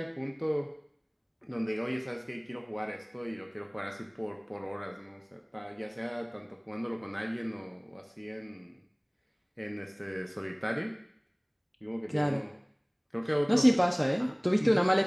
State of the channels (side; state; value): both; identical; correlation 1.00